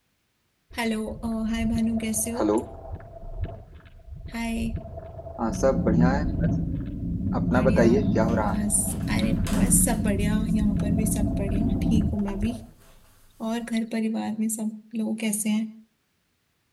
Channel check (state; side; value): identical; both; correlation 1.00